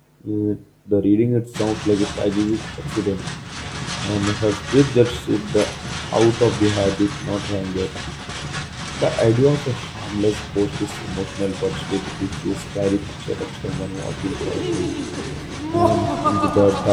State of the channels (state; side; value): identical; both; correlation 1.00